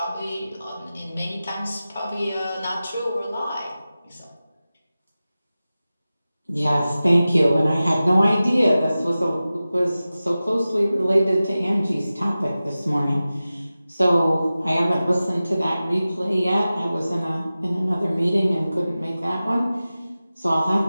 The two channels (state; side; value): inverted; both; correlation -0.95